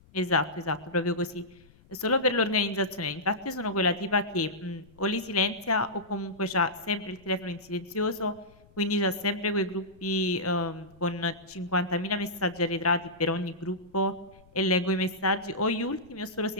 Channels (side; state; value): left; noise; rumble, 27 dB below the sound